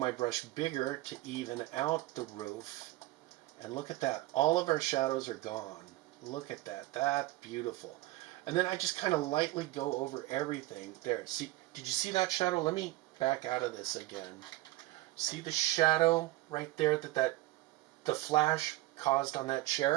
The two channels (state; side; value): quieter; left; 18.0 dB